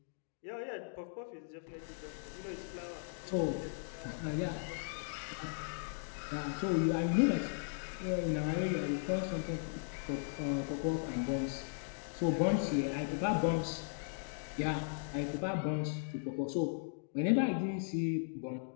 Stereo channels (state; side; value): silent; right; digital silence